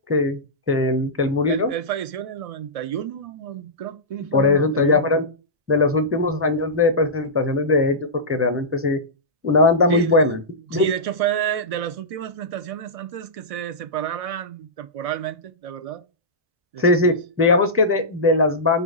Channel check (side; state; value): left; late; 1.6 ms